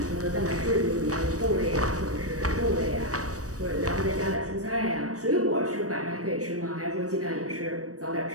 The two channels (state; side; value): late; left; 0.66 ms